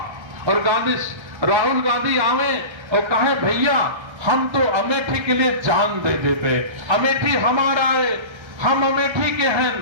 और राहुल गांधी आवे और कहे भैया हम तो अमेठी के लिए जान दे देते, अमेठी हमारा है, हम अमेठी के हैं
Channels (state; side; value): late; left; 1.3 ms